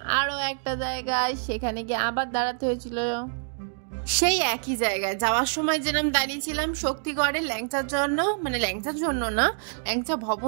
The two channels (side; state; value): left; silent; digital silence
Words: আরও একটা জায়গায়, সেখানে গিয়ে আবার দাঁড়াতে হয়েছিল সেই একই জায়গায়। যাওয়ার সময় যেরকম দাঁড়িয়েছিলাম শক্তিগড়ের ল্যাংচার জন্য, মানে ল্যাংচার জন্য না, ল্যাংচা